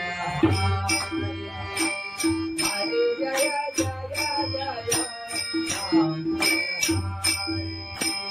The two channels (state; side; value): identical; both; correlation 1.00